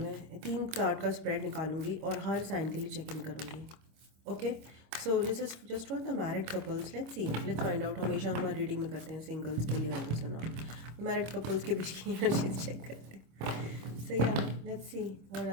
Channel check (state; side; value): late; left; 26 ms